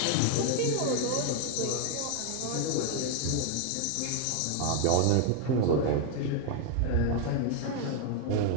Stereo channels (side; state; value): both; different; correlation 0.00